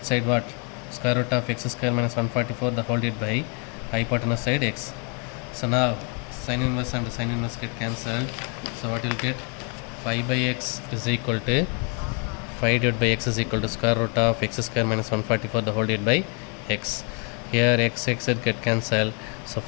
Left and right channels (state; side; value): quieter; right; 36.7 dB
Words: side what? Square root of x square minus 144 the whole divided by hypotenuse side x. So now sin inverse and sin inverse get cancelled. So what you'll get? 5 by x is equal to 5 divided by x is equal to square root of x square minus 144 the whole divided by x. Here x get cancelled. So